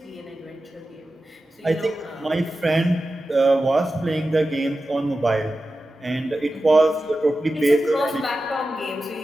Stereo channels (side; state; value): both; normal; correlation 0.93